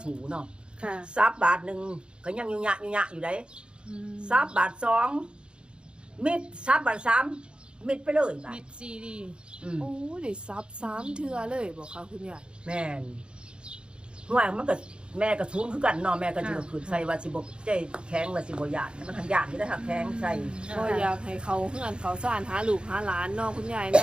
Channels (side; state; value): left; late; 0.053 ms